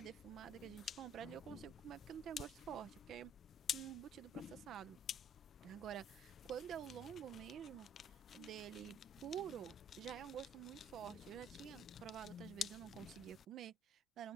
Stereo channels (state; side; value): normal; both; correlation 0.60